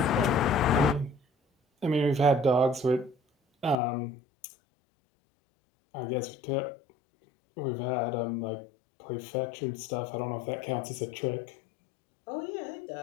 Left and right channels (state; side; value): drops out; right; at 3.8 s